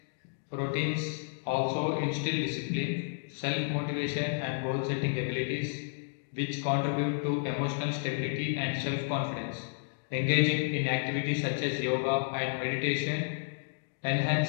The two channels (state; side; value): silent; right; digital silence